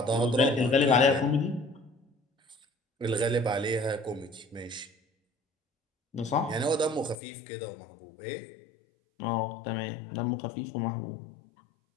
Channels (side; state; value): right; drops out; at 7.2 s